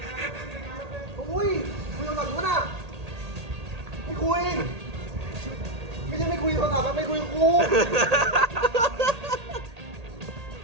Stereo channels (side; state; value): left; late; 1.8 ms